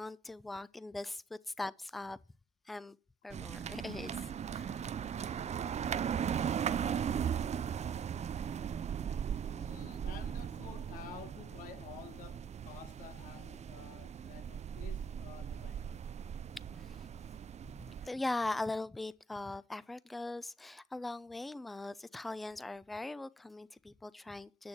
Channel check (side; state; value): left; quieter; 3.9 dB